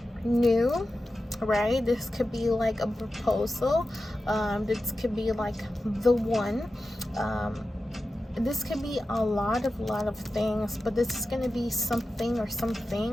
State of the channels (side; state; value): both; normal; correlation 0.92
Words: new, right? This could be like a proposal. This could be like the one. This could be a lot of things, but this is going to be something or some